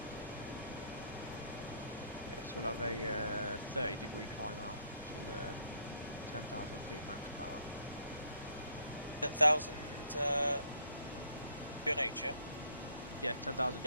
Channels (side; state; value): both; inverted; correlation -0.66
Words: Yeah, so we'll have a 30-degree climb out to 10,000 feet max power. 10,000 QNH, yeah? Yeah, 10,000